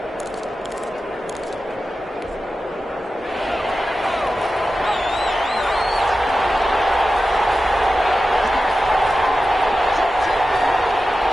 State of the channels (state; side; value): normal; both; correlation 0.93